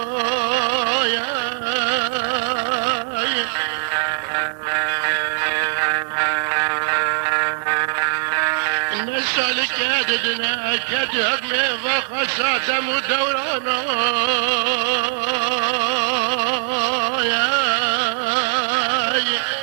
نسألك يا ددنا كدهب ميضا خساتم ودورانا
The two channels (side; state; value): left; silent; digital silence